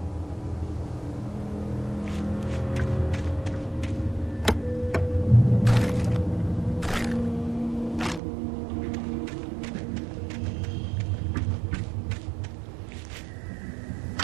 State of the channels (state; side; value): drops out; left; at 8.2 s